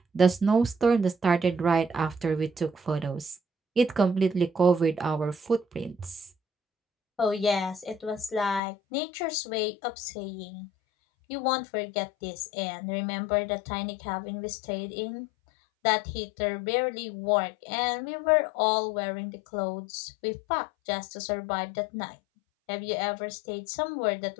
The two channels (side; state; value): right; drops out; at 8.6 s